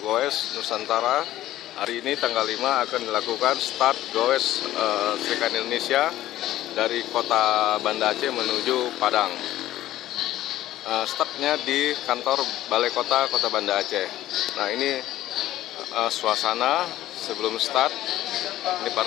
Nusantara. Hari ini tanggal 5 akan dilakukan start goes Serikat Indonesia dari kota Banda Aceh menuju Padang. Startnya di kantor Balai Kota Banda Aceh. Nah, ini suasana sebelum start. Ini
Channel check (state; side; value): quieter; right; 14.2 dB